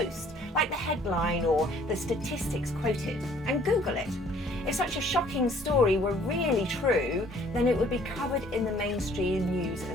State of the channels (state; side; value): normal; both; correlation 0.58